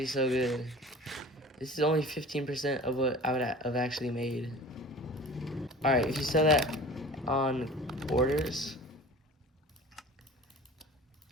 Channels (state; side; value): normal; both; correlation 0.41